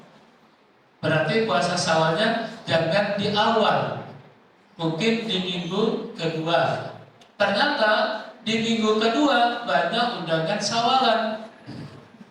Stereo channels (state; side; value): identical; both; correlation 1.00